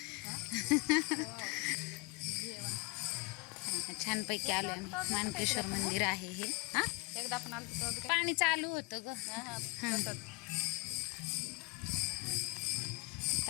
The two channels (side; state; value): right; quieter; 26.6 dB